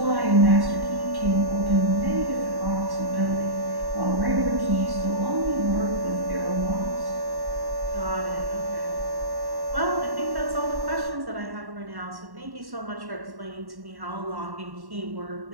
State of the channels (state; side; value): late; left; 1.1 ms